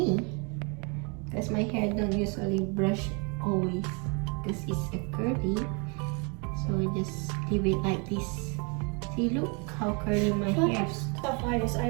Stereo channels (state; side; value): quieter; left; 33.6 dB